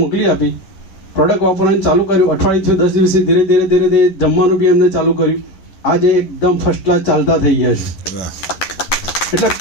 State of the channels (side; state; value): right; late; 11 ms